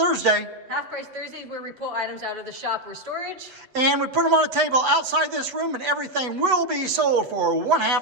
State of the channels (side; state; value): left; late; 8.0 ms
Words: Half Price Thursdays, where we pull items out of the shop or storage. And we put them on a table outside this room, and everything will be sold for one